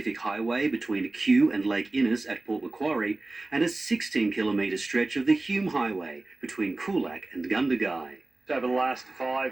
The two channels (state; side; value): quieter; left; 3.0 dB